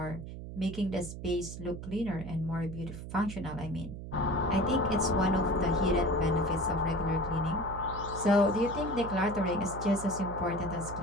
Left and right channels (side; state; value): right; noise; hum, 10 dB below the sound